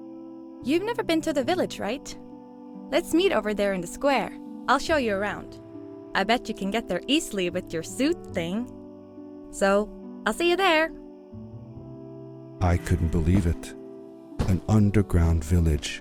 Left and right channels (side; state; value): both; identical; correlation 1.00